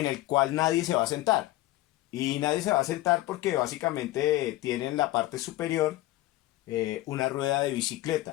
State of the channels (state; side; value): quieter; right; 16.9 dB